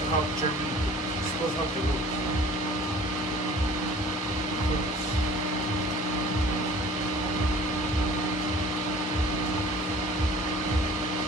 to help germinate. It's supposed to help the roots.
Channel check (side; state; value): both; normal; correlation 0.48